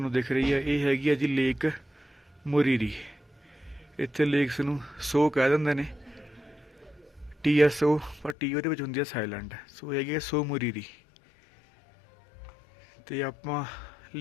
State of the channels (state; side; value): drops out; right; at 8.3 s